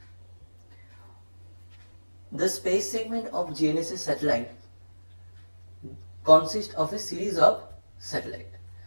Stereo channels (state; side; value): inverted; both; correlation -1.00